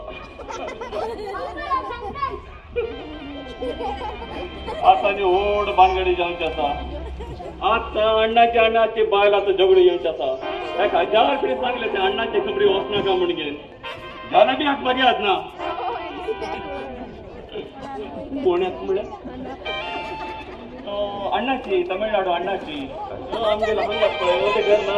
आता नी व्हड भानगडी जावची आसा आता अण्णाची बायल आता झगडो येवची आसा ताका 1000 पिढी सांगले ते अण्णाची खबरी वचनाका म्हणून झाला बी हाक बरी आहात ना पुण्यात म्हळ्यार अण्णाची तमिळनाडू अण्णाची आमगेला म्हणतात पळय ते घर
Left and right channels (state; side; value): identical; both; correlation 1.00